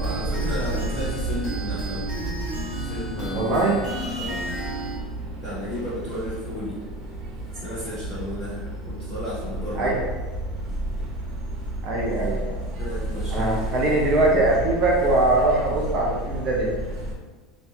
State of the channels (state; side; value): normal; both; correlation 0.30